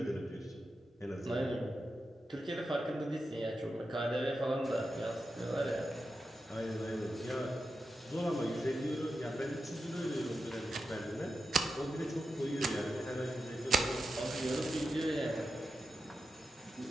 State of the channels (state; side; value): normal; both; correlation 0.89